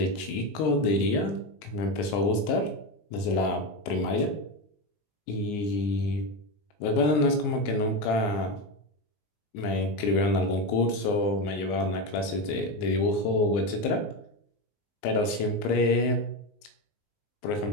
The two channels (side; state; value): right; late; 19 ms